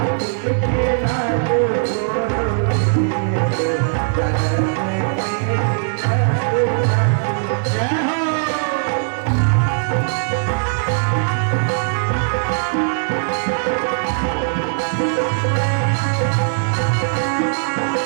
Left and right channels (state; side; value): silent; left; digital silence